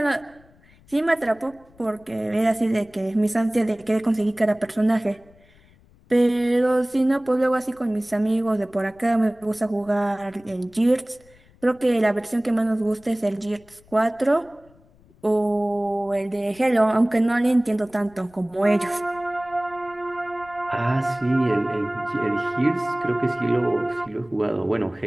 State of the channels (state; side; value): noise; left; rumble, 28 dB below the sound